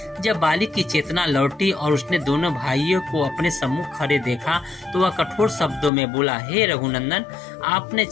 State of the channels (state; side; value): drops out; right; at 5.9 s